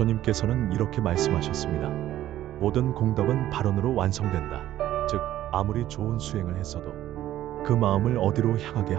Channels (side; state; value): left; quieter; 13.2 dB